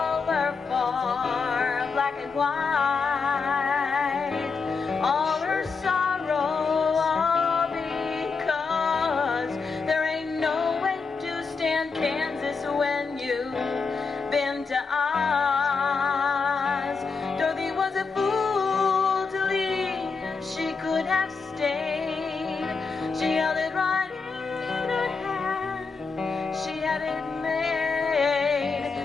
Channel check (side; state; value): right; quieter; 4.8 dB